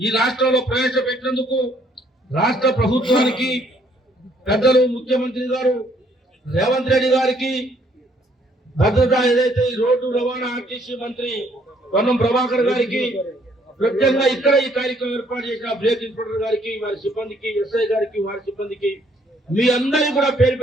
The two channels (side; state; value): both; normal; correlation 0.66